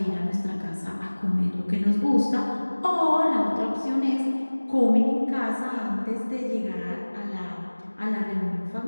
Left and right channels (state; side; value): inverted; both; correlation -1.00